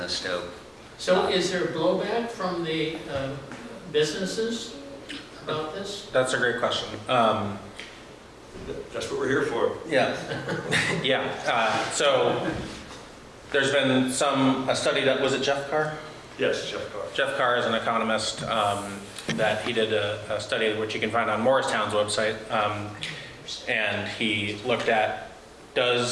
Stowe. So is there blowback from the businesses about this? that's a great question. That's what we're here for. Yeah. Yeah. So there's been a study that was it Jeff Carr? Yes, Jeff Carr. Jeff Carr is an economist that he did a study which you can find on Morristown's website, and he looked at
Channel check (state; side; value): identical; both; correlation 1.00